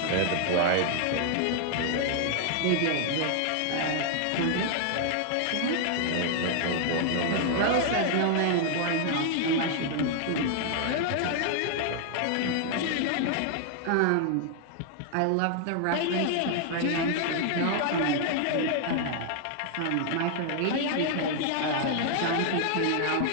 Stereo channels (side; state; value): both; different; correlation 0.00